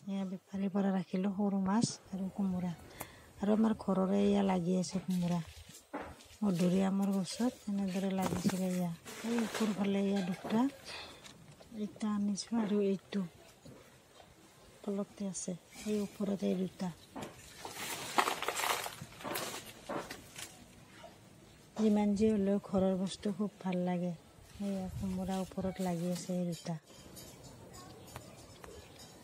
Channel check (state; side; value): identical; both; correlation 1.00